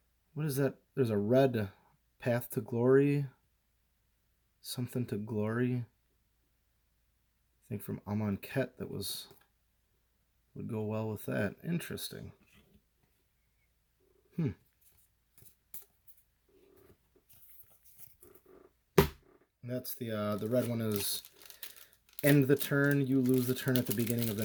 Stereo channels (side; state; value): both; identical; correlation 1.00